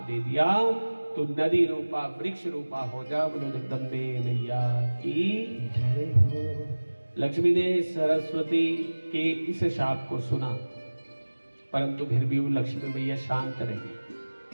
दे दिया। तो नदी रूपा वृक्ष रूपा हो जा। बोलो जगदम्बे मैया की जय हो। लक्ष्मी ने सरस्वती के इस शाप को सुना, परंतु फिर भी वो लक्ष्मी मैया शांत रही।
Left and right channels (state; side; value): inverted; both; correlation -1.00